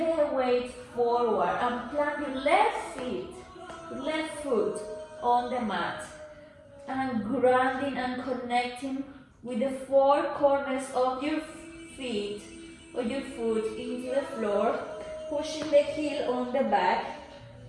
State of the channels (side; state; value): both; identical; correlation 1.00